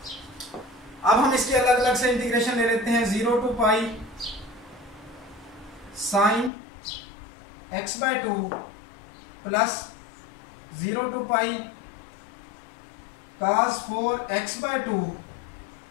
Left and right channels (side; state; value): right; drops out; at 6.5 s